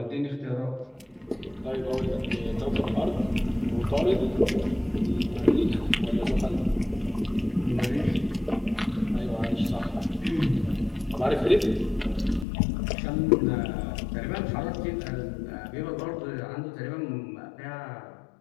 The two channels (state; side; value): drops out; right; at 12.5 s